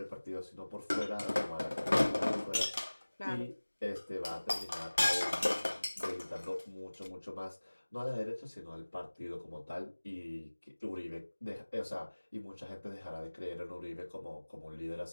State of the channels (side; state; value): both; inverted; correlation -1.00